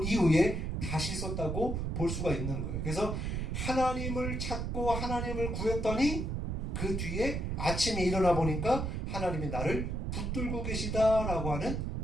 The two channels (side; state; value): right; noise; rumble, 2 dB below the sound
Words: 이후에 다시 썼다고 볼 수가 있는 거예요. 그래서 하나님을 찾고 하나님을 구했더니 그 뒤에 아침에 일어나 보니까 하나님이 나를 붙들고 계시다라고 하는